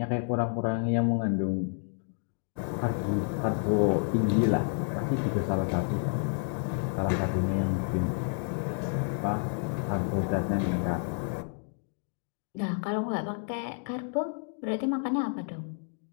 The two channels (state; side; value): silent; right; 56 dB below the other